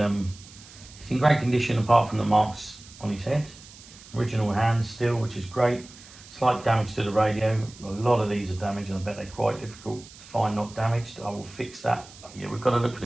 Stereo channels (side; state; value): right; noise; hiss, 20 dB below the sound